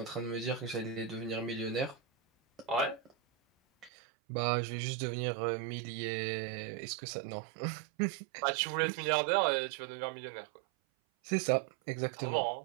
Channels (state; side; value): drops out; left; at 3.9 s